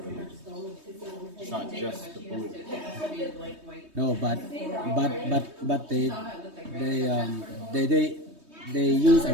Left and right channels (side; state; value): left; late; 3.2 ms